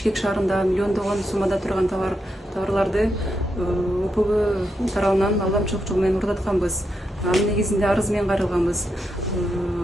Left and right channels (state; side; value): normal; both; correlation 0.84